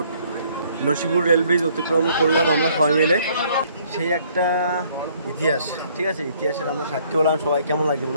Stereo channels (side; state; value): both; inverted; correlation -0.63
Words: Nasipur rail bridge অতিক্রম করলাম আমরা সবাই মিলে। সেই একটা ইতিহাস, ঠিক আছে, ইতিহাসের আমরা সাক্ষী হলাম। সবাই কেমন লাগছে